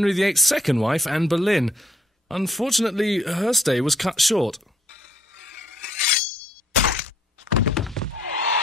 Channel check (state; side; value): normal; both; correlation 0.66